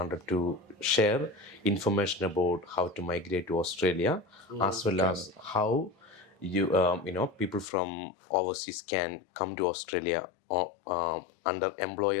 to share information about how to migrate to Australia, as well as how people from overseas can come to Australia under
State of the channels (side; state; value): right; drops out; at 7.7 s